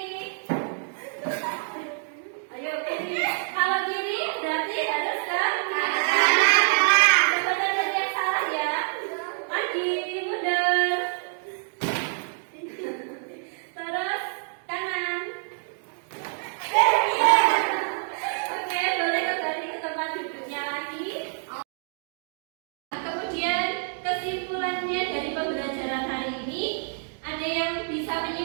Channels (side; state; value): left; silent; 60 dB below the other